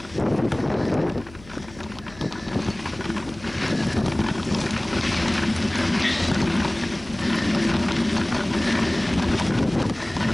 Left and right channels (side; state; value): left; noise; hum, 21 dB below the sound